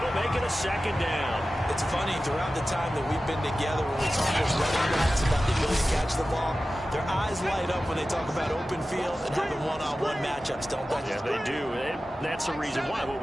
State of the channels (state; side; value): normal; both; correlation 0.94